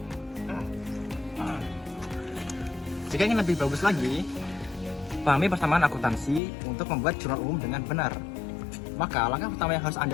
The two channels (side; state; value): right; drops out; at 6.4 s